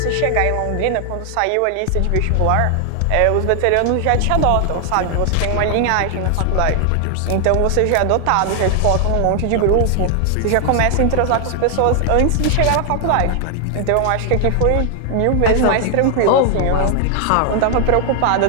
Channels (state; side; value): different; both; correlation 0.00